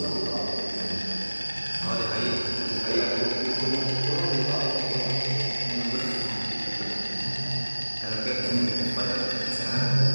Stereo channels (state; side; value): inverted; both; correlation -1.00